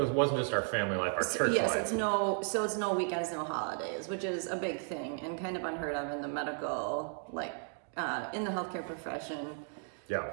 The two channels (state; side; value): silent; left; 55 dB below the other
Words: wasn't just our family life, our church yes, life. it's no weekends, no holidays, which is a big thing and kind of unheard of in the medical, like in the healthcare profession. Yeah.